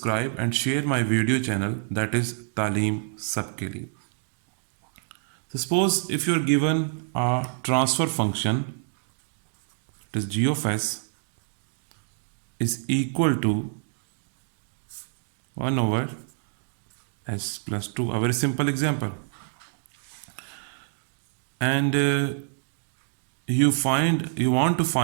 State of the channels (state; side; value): silent; left; digital silence